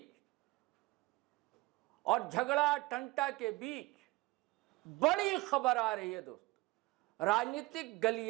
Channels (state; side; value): quieter; left; 20.9 dB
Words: और झगड़ा टंटा के बीच बड़ी खबर आ रही है दोस्तों। राजनीतिक